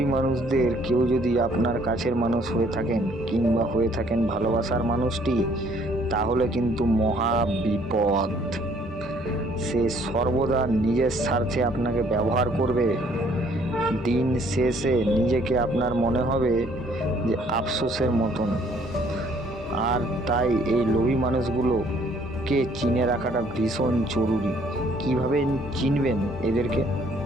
মানুষদের কেউ যদি আপনার কাছের মানুষ হয়ে থাকেন কিংবা হয়ে থাকেন ভালোবাসার মানুষটি, তাহলে কিন্তু মহা বিপদ। সে সর্বদা নিজের স্বার্থে আপনাকে ব্যবহার করবে। দিন শেষে নিজেকে আপনার মনে হবে যে আফসোসের মতন। আর তাই এই লোভী মানুষগুলোকে চিনে রাখাটা ভীষণ জরুরি। কিভাবে চিনবেন এদেরকে?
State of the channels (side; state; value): both; normal; correlation 0.62